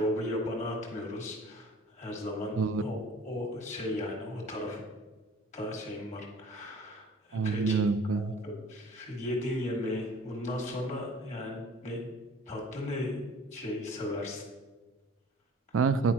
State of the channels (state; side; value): normal; both; correlation 0.48